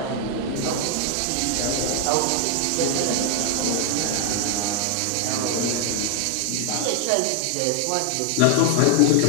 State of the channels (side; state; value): both; different; correlation 0.00